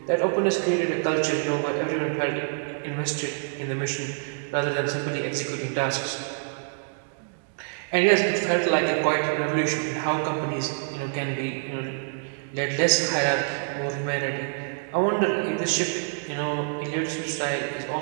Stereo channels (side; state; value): left; silent; 61 dB below the other